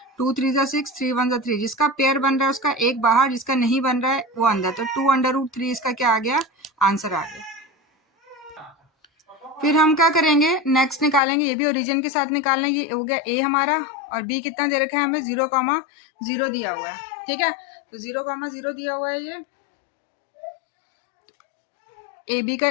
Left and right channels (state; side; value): drops out; right; at 11.2 s